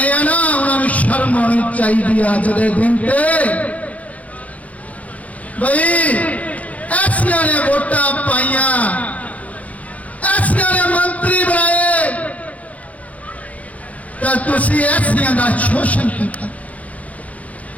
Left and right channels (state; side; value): late; right; 0.069 ms